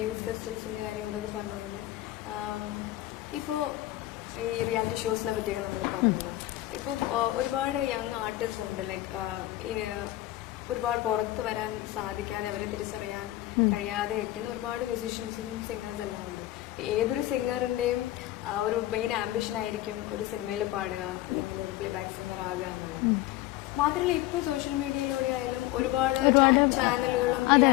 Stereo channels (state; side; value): quieter; right; 16.1 dB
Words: യൂത്ത് ഫെസ്റ്റിവൽസിന്റെ കാര്യം അതൊക്കെ പറഞ്ഞ പോലെ ഇപ്പോൾ ഈ റിയാലിറ്റി ഷോസിനെ പറ്റിയൊക്കെ നമ്മൾ പറഞ്ഞല്ലോ. ഇപ്പം ഒരുപാട് യങ് ആർട്ടിസ്റ്റ് ഉണ്ട്, ലൈക്ക് ഒരുപാട് പുറത്ത് വരാൻ സാധിക്കാതെ അവരെ തിരിച്ചറിയാൻ കഴിയാതെ ഇരിക്കുന്ന ഒരുപാട് മ്യൂസീഷ്യൻസും സിംഗേഴ്സ് എല്ലാം ഉണ്ട്. ഏതൊരു സിംഗറിന്റെയും ഒരു മെയിൻ ആംബിഷൻ ആയിരിക്കും ഒരു സിനിമയിൽ പാടുക അല്ലെങ്കിൽ ഒരു പ്ലേ ബാക്ക് സിംഗർ ആകുക എന്നുള്ളത്. മാത്രമല്ല ഇപ്പൊ സോഷ്യൽ മീഡിയയിലൂടെ ആയാലും ഒരുപാട് ചാനലുകളും